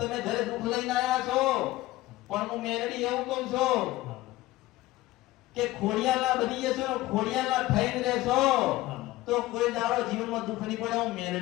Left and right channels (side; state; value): right; quieter; 17.5 dB